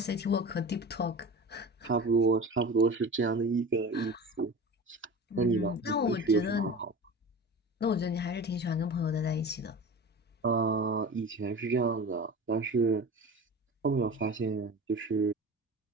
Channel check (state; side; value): normal; both; correlation 0.33